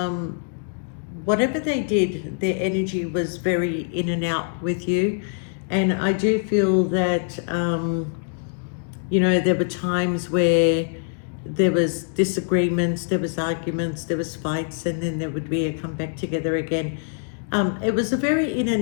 whatever they did, their energy was very in and out with you. And I do feel that, you know, there were times where there was disagreements, there was arguments, there was fights, and then there would be a come back together again. It was a very in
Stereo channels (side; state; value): right; silent; digital silence